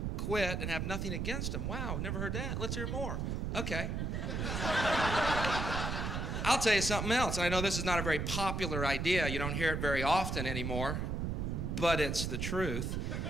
quit, and have nothing against them. Wow, never heard that. Let's hear more. Okay. I'll tell you something else. I know this is not a very popular idea. You don't hear it very often anymore, but it's the truth.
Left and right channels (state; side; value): noise; right; rumble, 1 dB below the sound